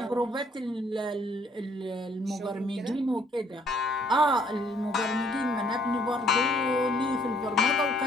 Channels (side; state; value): both; normal; correlation 0.64